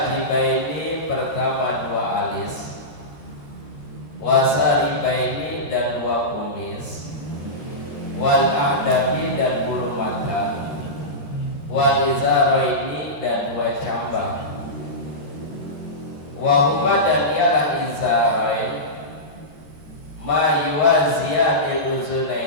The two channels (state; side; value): late; right; 13 ms